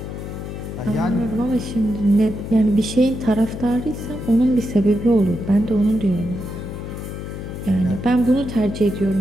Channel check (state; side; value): noise; left; hum, 8 dB below the sound